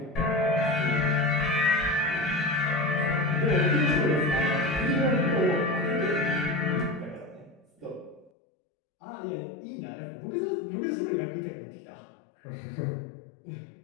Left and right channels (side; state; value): right; drops out; at 8.3 s